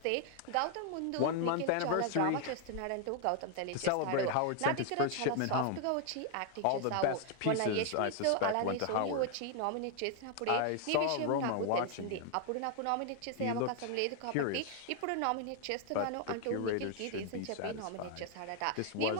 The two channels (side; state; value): both; different; correlation 0.00